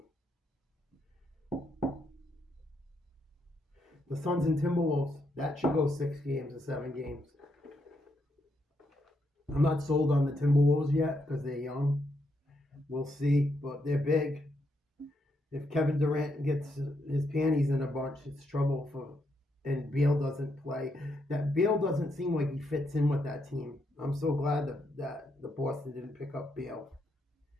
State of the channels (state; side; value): normal; both; correlation 0.79